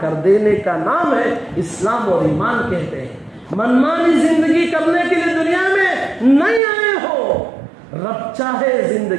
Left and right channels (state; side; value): drops out; left; at 6.6 s